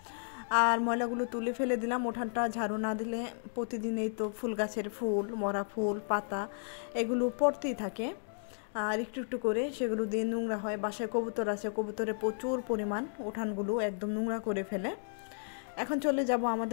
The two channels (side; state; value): right; silent; digital silence